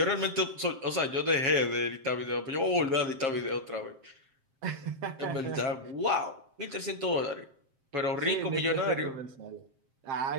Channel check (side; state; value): left; late; 7.1 ms